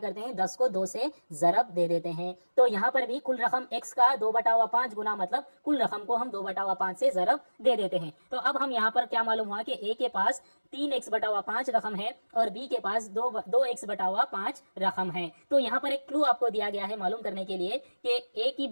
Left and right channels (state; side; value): inverted; both; correlation -1.00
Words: हैं, 10 को 2 से ज़रब दे देते हैं। तो यहाँ पर भी कुल रकम x का 2/5 गुना मतलब कुल रकम को हम 2/5 से ज़रब दे देते हैं। तो अब हम यहाँ पर क्या मालूम हुआ कि a के पास 3x/5 रकम है और b के पास 2x/5 रकम है। तो यहाँ पर एक क्लू आपको दिया गया है मालूम करने के लिए कि a की